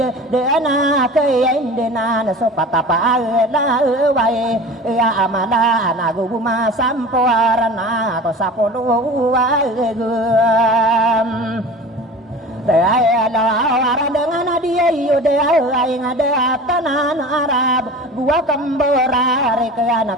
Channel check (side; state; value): both; normal; correlation 0.37